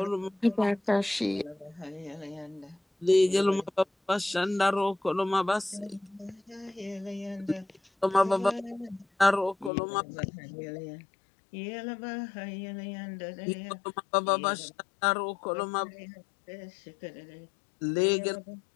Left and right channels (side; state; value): right; drops out; at 9.7 s